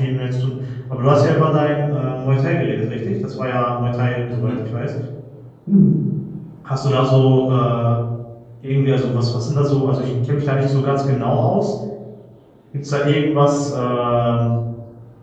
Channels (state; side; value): identical; both; correlation 1.00